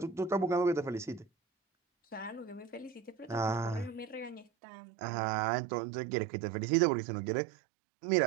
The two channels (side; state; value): left; drops out; at 4.5 s